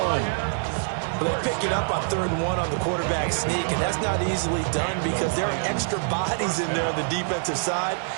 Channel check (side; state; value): left; silent; digital silence